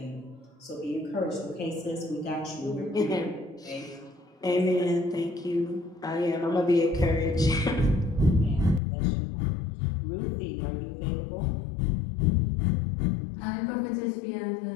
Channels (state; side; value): drops out; right; at 8.8 s